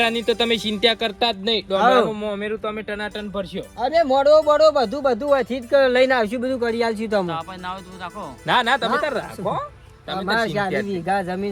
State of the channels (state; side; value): identical; both; correlation 1.00